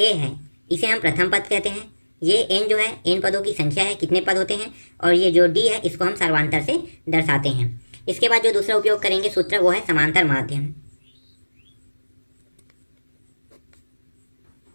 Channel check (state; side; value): inverted; both; correlation -1.00